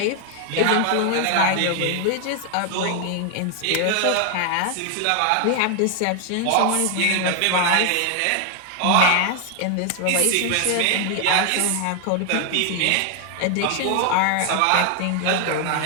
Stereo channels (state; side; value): different; both; correlation 0.00